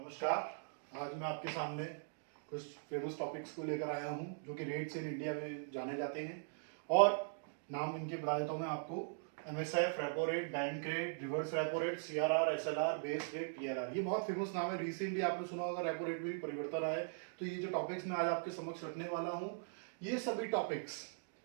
आज मैं आपके सामने कुछ फेमस टॉपिक्स को लेकर आया हूं जो कि रेट्स इन इंडिया में जाने जाते हैं। और नाम इनके बता देता हूं मैं आपको। MSF, repo rate, bank rate, reverse repo rate, CRR, SLR, base rate, PLR. ये बहुत फेमस नाम है। रिसेंटली आपने सुना होगा रेपो रेट में भी परिवर्तन आया है। तो ये जो टॉपिक्स मैं आज आपके समक्ष रखने वाला हूँ, ये सभी टॉपिक्स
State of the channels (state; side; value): silent; left; digital silence